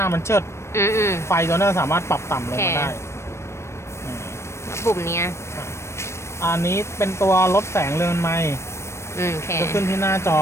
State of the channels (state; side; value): late; right; 0.13 ms